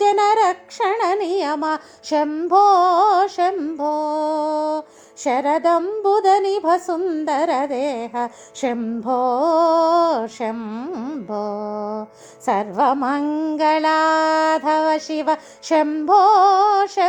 जनरक्षण नियम शम्भो शम्भो शरदम्बुदनिभ सुन्दर देह शम्भो शम्भो सर्वमङ्गलाधव शिव शम्भो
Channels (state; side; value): identical; both; correlation 1.00